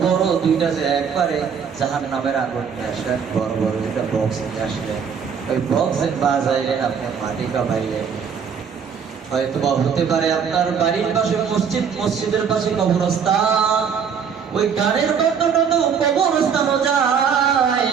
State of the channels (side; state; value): left; quieter; 6.9 dB